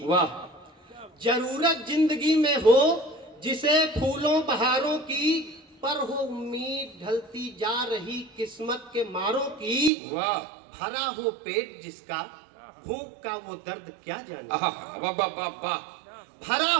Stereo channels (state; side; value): drops out; left; at 9.9 s